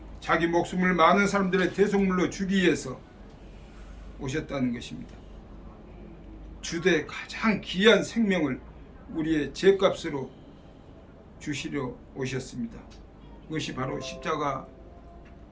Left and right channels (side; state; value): both; identical; correlation 1.00